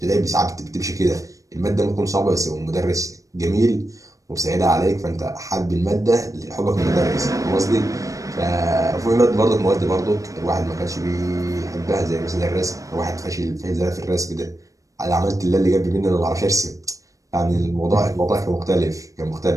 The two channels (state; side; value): late; left; 0.16 ms